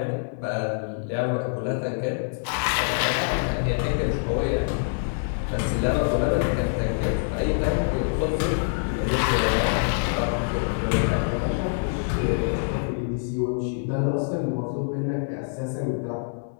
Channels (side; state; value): right; silent; 61 dB below the other